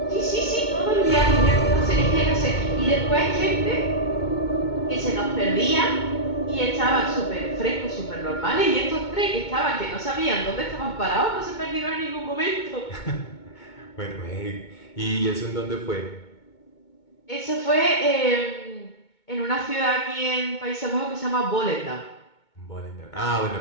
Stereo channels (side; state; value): right; late; 2.2 ms